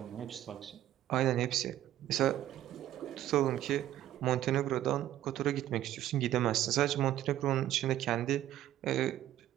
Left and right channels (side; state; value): left; quieter; 12.9 dB